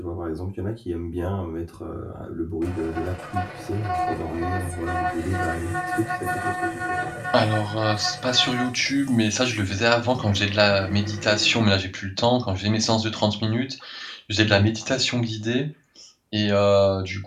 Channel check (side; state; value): both; identical; correlation 1.00